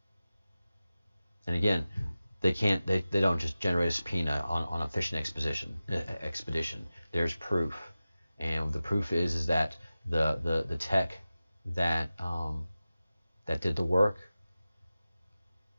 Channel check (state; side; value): inverted; both; correlation -0.95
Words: And again, they don't just generate a subpoena on a fishing expedition. There's proof, and the proof is that the tech that did the work